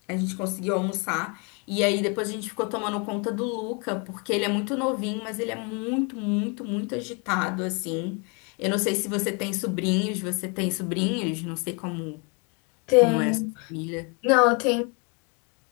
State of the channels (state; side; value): quieter; right; 32.6 dB